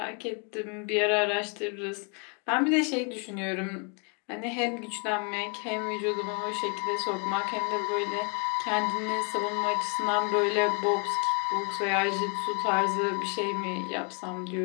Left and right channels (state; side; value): quieter; right; 36.6 dB